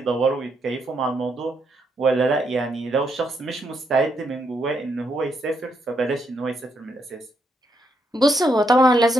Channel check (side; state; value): both; normal; correlation 0.77